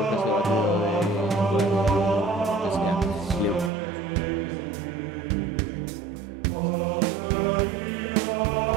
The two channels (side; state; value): left; drops out; at 3.7 s